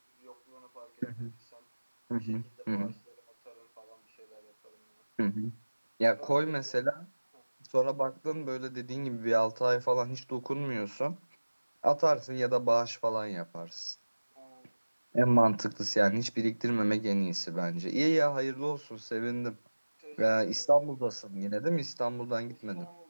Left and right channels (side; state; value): both; inverted; correlation -1.00